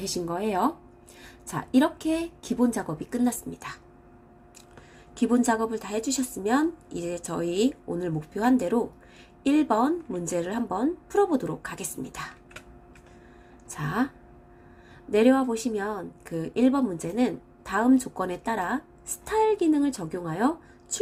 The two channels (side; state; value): both; identical; correlation 1.00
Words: 거예요. 자, 이렇게 기본 작업이 끝났습니다. 기본 작업을 다 해주셨으면 이제 저희 오늘 목표한 대로 1번 문제를 한번 풀어보도록 하겠습니다. 자, 내려와 보시면 그 1번 문제는 다음 조건에 따라 스타일 기능을 적용하여